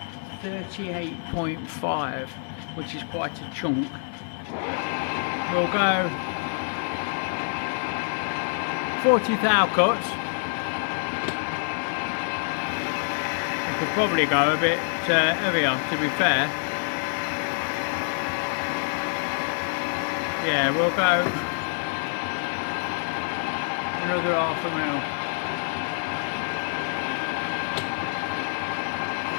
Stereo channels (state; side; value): silent; right; 61 dB below the other